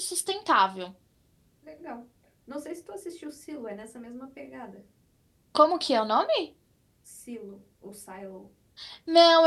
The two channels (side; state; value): both; identical; correlation 1.00